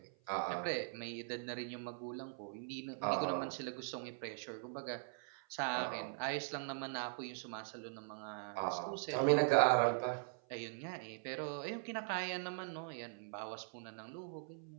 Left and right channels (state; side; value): silent; left; 50 dB below the other